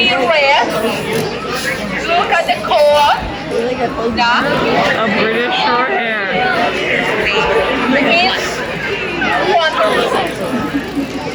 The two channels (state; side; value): identical; both; correlation 1.00